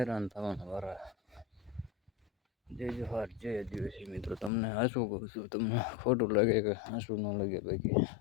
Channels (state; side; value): drops out; right; at 4.5 s